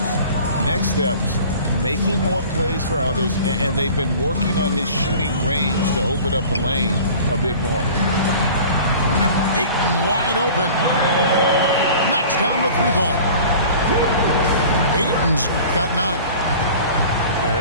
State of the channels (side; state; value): both; inverted; correlation -0.43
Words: Next steps, making more plays for others, and they've been working on his shooting range to open up the lane a bit more. Ayton wide open. Knocks down the 3-ball. Ayton's got 9. Yeah,